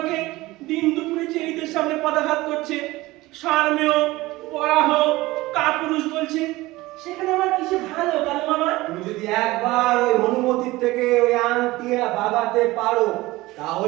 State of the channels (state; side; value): quieter; left; 19.3 dB